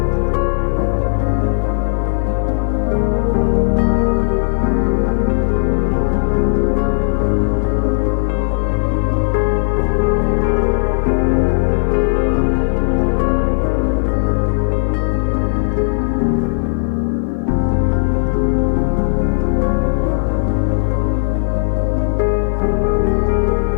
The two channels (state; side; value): silent; right; 61 dB below the other